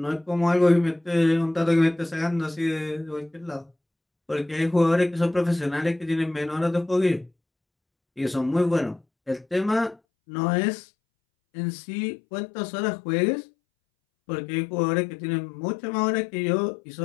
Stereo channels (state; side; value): drops out; right; at 10.0 s